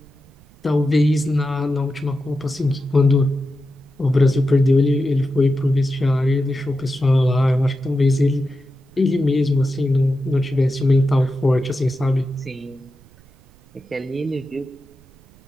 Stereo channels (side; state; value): right; noise; rumble, 27 dB below the sound